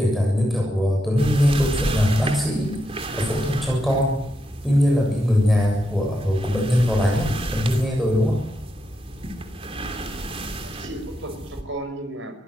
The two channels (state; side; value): normal; both; correlation 0.84